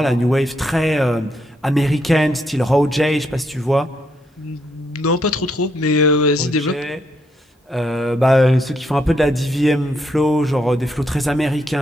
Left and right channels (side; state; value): both; normal; correlation 0.76